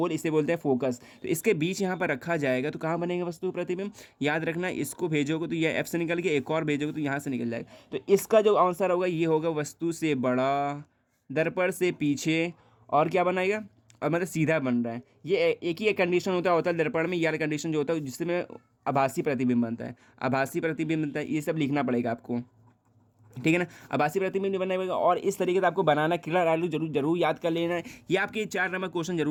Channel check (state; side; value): identical; both; correlation 1.00